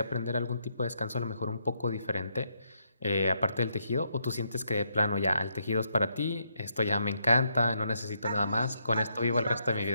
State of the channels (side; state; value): both; inverted; correlation -0.77